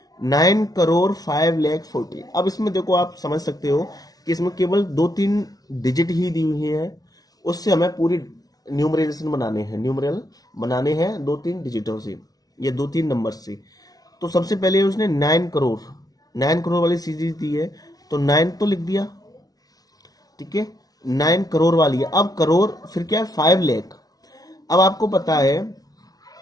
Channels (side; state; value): right; late; 0.18 ms